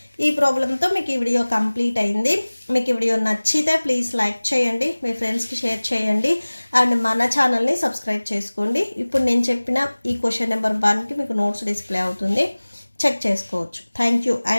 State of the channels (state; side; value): inverted; both; correlation -1.00